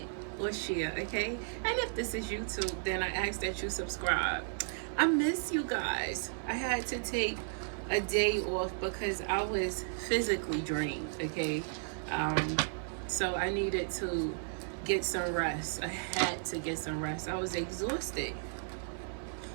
or share, okay? And if this is YouTube, then I ask that you subscribe. I miss you guys. I had to take a day off because I was physically drained, okay? So I needed to get some rest. I had to get some rest. I was exhausted.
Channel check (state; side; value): silent; left; 55 dB below the other